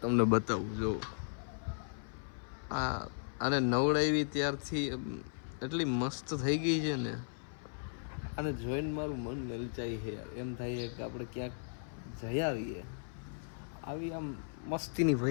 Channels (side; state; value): right; silent; 53 dB below the other